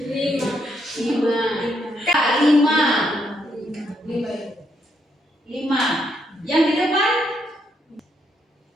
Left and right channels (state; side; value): normal; both; correlation 0.76